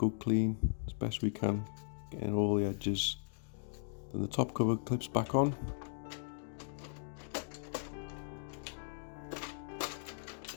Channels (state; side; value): silent; right; digital silence